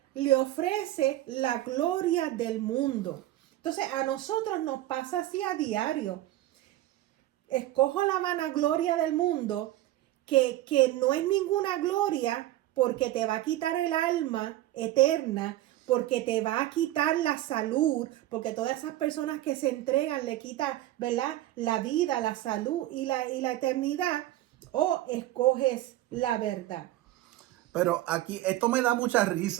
le ofrece la gloria del mundo. Entonces, a nosotros nos pasa así a diario. Escojo la vanagloria del mundo, que no es ninguna gloria, porque te va a quitar el alma eterna, porque te va a quitar la salud, porque todas esas personas que se entregan le quita, ¿verdad?, la vida, la salud y la eternidad. O escoges la verdad. Pero aquí, esto me da mucha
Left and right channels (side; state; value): left; quieter; 15.0 dB